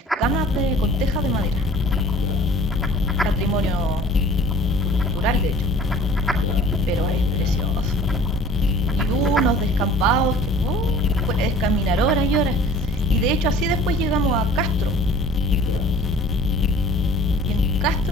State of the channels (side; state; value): both; normal; correlation 0.48